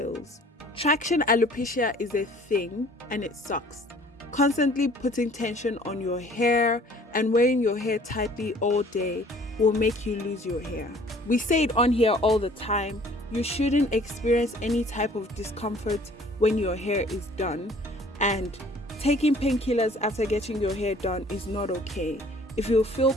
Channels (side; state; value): both; normal; correlation 0.53